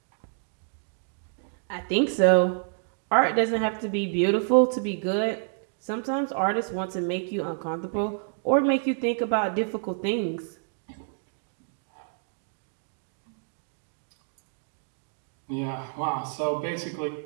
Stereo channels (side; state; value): left; silent; digital silence